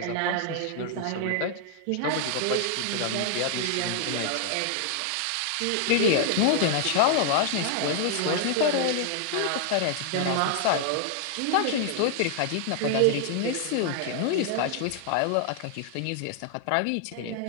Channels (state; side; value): different; both; correlation 0.00